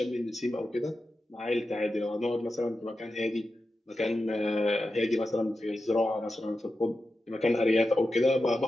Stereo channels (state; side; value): normal; both; correlation 0.91